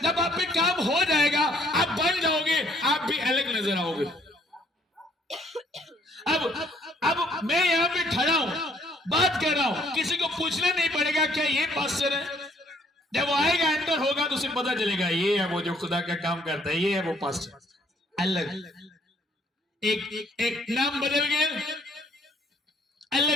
जब आप पे काम हो जाएगा आप बन जाओगे, आप भी अलग नजर आओगे। अब मैं यहां पे खड़ा हूं, बात कर रहा हूं, किसी को पूछना नहीं पड़ेगा क्या ये पास्टर है। जब वो आएगा एंटर होगा तो उसे पता चलेगा ये है वो जो खुदा का काम करता है, ये है वो पास्टर। अलग एक नाम बदल गया,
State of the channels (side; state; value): both; normal; correlation 0.64